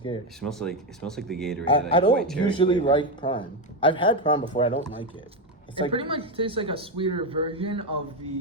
It smells like the Gatorade. I white don't cherry usually flavor. like Prime. I've had Prime before. I don't like it. It's It like pretty much tastes like a sweeter version of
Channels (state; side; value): normal; both; correlation 0.09